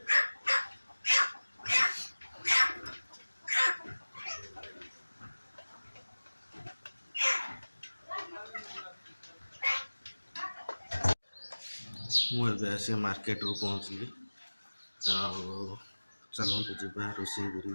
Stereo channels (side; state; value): both; inverted; correlation -1.00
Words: मुझे आस मार्केट रू पहुँचली चलते जा रोषे